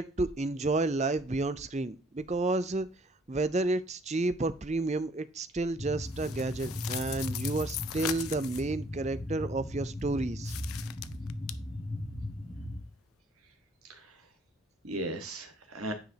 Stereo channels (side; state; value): both; normal; correlation 0.61